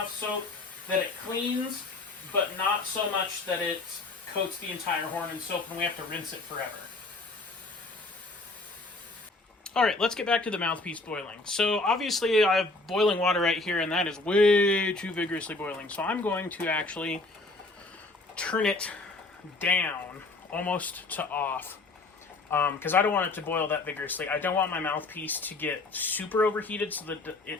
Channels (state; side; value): quieter; right; 3.2 dB